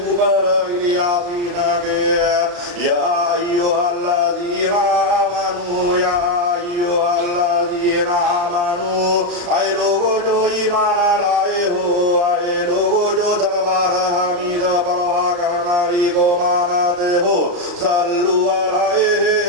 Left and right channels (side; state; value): left; late; 34 ms